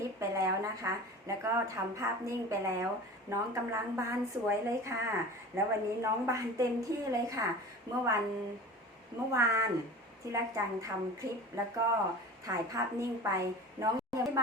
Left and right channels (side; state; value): both; normal; correlation 0.36